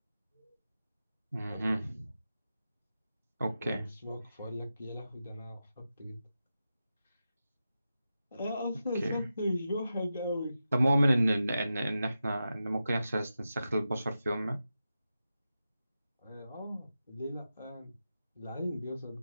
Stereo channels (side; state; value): both; inverted; correlation -0.90